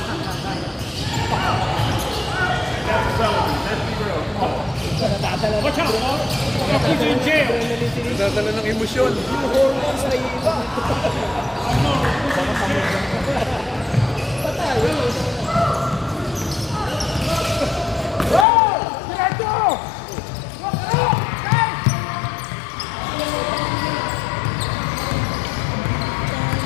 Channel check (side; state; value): right; drops out; at 18.4 s